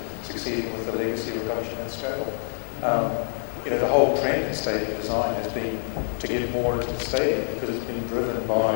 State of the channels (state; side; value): silent; right; digital silence